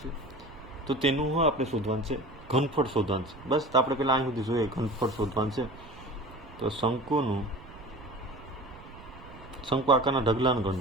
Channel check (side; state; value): right; noise; rumble, 19 dB below the sound